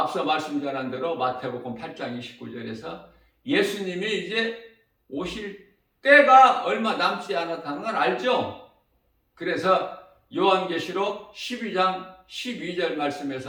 말씀 전한 대로 마태복음 8장 29절에서 예수님이 이제 오실 때가 얼마 남지 않았다는 걸 알죠. 그래서 요한계시록 12장 12절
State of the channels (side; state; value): both; identical; correlation 1.00